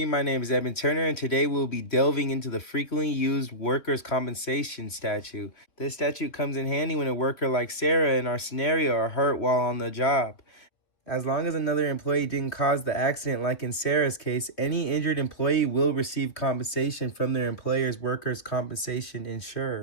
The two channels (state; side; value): late; right; 2.9 ms